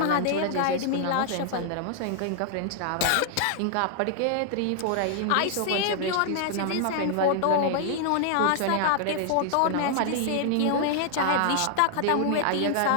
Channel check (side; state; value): both; different; correlation -0.01